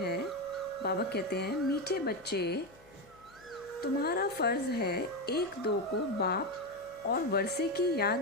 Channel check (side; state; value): left; noise; hum, 27 dB below the sound